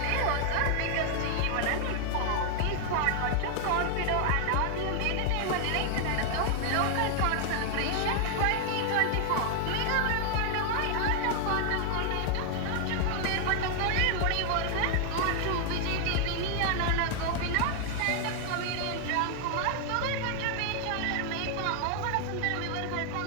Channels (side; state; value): both; different; correlation 0.00